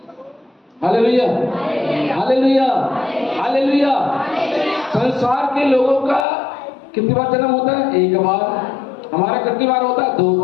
Hallelujah, hallelujah, hallelujah. संसार के लोगों का कितनी बार जन्म होता है? एक बार। हमारा कितनी बार होता है? 2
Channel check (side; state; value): right; drops out; at 6.2 s